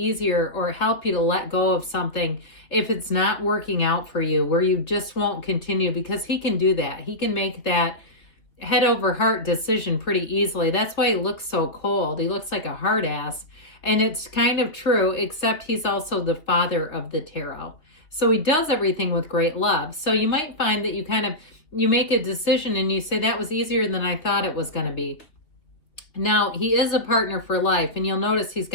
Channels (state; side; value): late; right; 3.2 ms